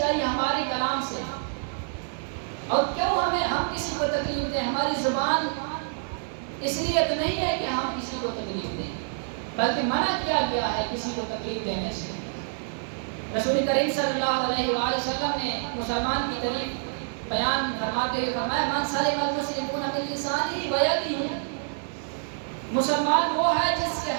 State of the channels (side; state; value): left; silent; 60 dB below the other